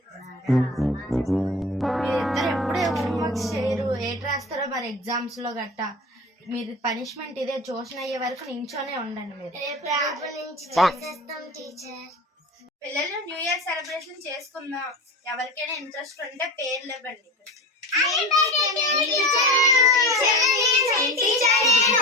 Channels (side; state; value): both; normal; correlation 0.31